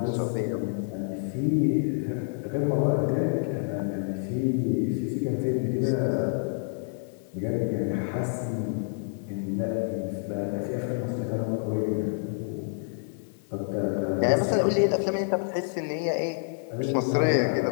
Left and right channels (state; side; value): silent; right; 59 dB below the other